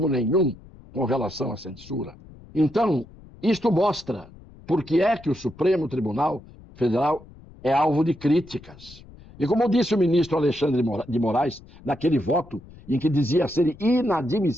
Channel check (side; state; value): left; noise; rumble, 21 dB below the sound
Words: nenhum com relação à censura. Então, isto mostra por que é que o Supremo Tribunal Federal é alvo de críticas. E como disse o ministro Alexandre de Moraes, naquele voto em que dizia ser